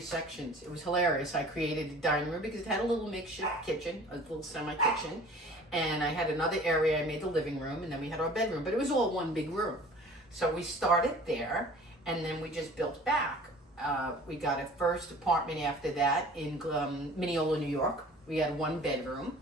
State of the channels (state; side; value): normal; both; correlation 0.46